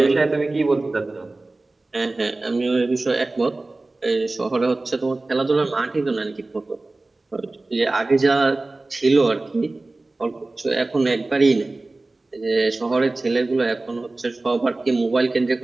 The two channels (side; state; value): left; quieter; 3.1 dB